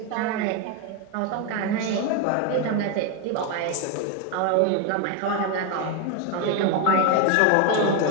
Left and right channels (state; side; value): different; both; correlation 0.02